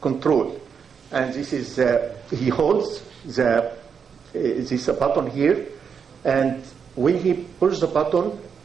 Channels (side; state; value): left; quieter; 6.6 dB